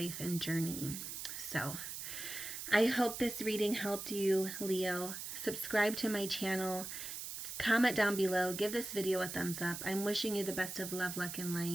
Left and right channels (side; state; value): right; noise; hiss, 7 dB below the sound